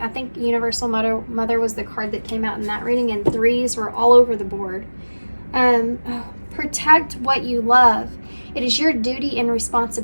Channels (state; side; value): inverted; both; correlation -1.00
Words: think Universal Mother was the card that came out in that reading, and 3s were all over the board. Protect what you love. It is your duty and